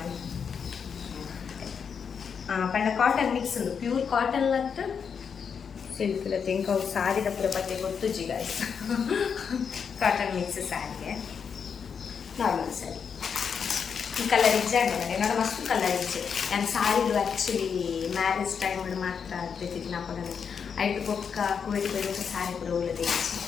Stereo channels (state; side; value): quieter; right; 6.6 dB